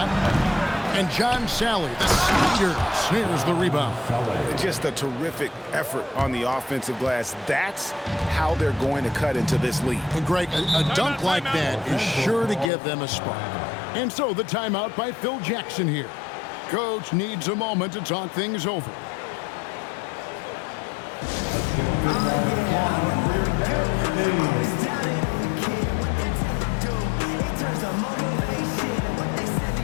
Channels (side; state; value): right; drops out; at 12.7 s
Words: And John Sally, the speeder, snares the rebound. Just a terrific effort on the offensive glass. That's how they're going to cut into this lead. And Greg, a dunk like that is sure to give them a spark. And so the timeout by Phil Jackson here. Coach needs a moment to talk things over.